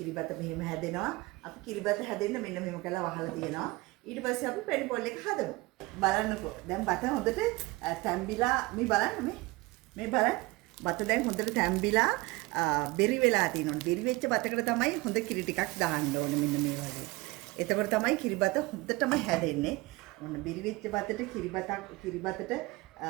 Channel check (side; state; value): left; quieter; 22.1 dB